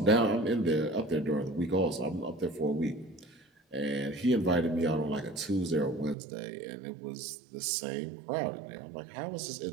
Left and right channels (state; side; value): drops out; left; at 6.2 s